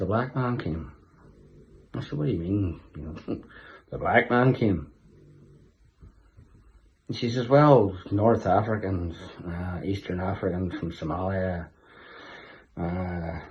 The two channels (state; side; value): identical; both; correlation 1.00